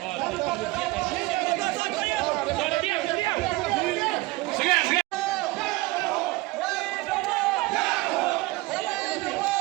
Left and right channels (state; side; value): quieter; left; 21.4 dB